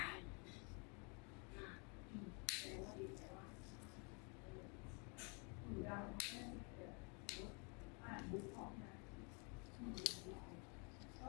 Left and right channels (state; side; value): quieter; right; 34.8 dB